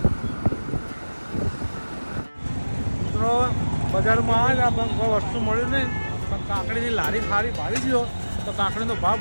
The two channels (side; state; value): both; inverted; correlation -1.00